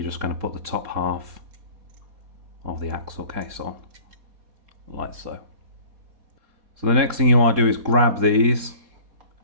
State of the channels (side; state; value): left; late; 3.7 ms